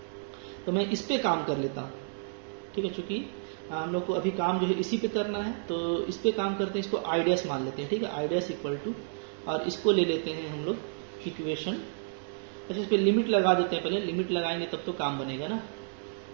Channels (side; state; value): left; silent; digital silence